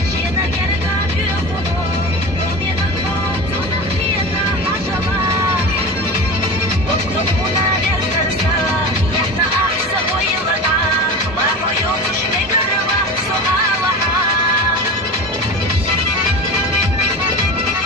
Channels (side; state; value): both; normal; correlation 0.30